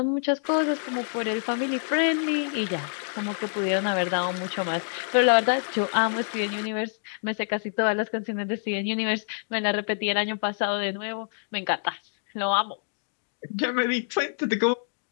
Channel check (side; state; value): right; silent; digital silence